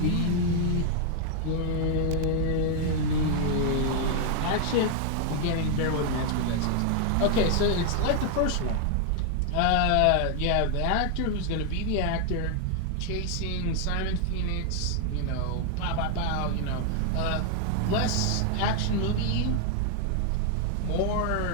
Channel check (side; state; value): both; different; correlation 0.00